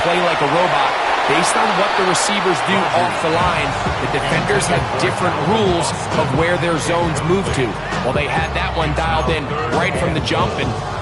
like a robot. Based on what the receivers do off the line, the defenders have different rules of where their zones move to. Well, they had that one dialed in right from the jump, and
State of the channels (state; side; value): identical; both; correlation 1.00